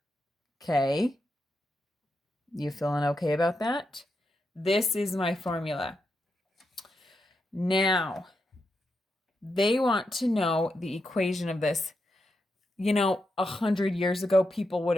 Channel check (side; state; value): both; normal; correlation 0.85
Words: Okay? You feeling okay about that? This is my formula. Now, they want to know the equation of this. 100 years ago, people would